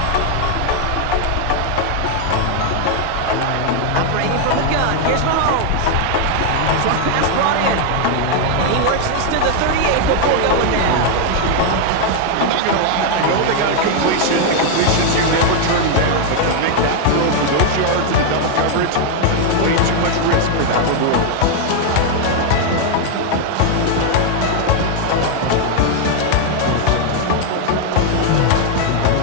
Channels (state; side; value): different; both; correlation 0.00